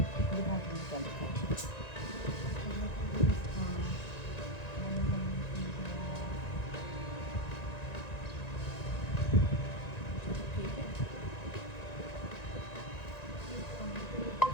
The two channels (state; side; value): late; right; 1.9 ms